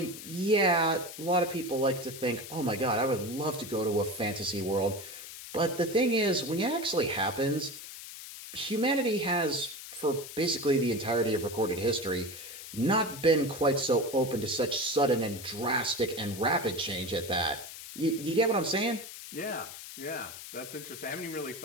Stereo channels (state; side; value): noise; left; hiss, 12 dB below the sound